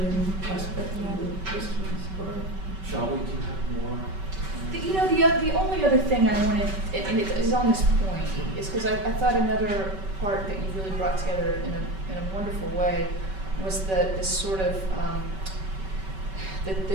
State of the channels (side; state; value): left; late; 5.2 ms